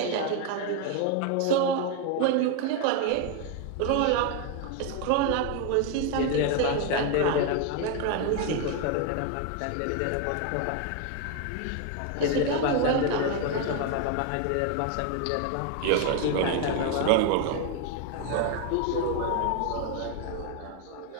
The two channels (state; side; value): different; both; correlation 0.01